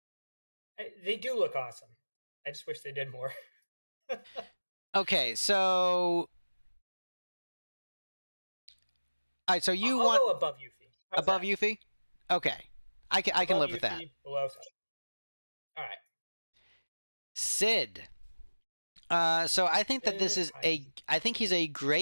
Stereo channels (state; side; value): inverted; both; correlation -1.00